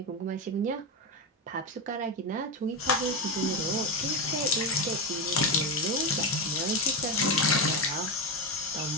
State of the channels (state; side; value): normal; both; correlation 0.12